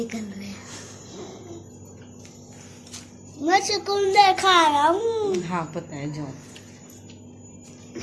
रहे हैं। मैं चुकंदर खा रहा हूँ। हाँ पता है जो।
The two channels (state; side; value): identical; both; correlation 1.00